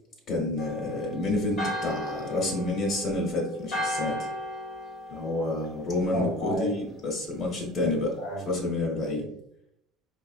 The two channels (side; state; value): both; normal; correlation 0.40